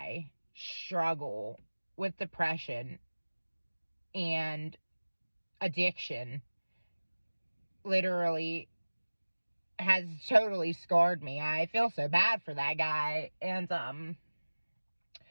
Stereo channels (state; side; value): inverted; both; correlation -1.00